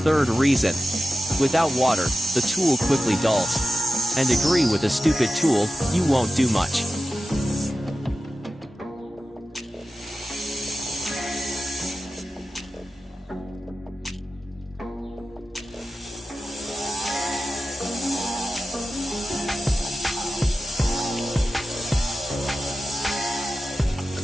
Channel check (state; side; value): normal; both; correlation 0.93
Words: reason, without water, the tool quickly dulls. And agree with a stupid tool, you won't do much.